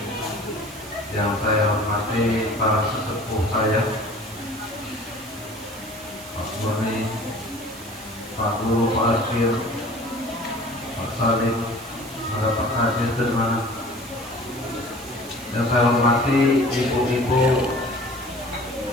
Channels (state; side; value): noise; right; hiss, 17 dB below the sound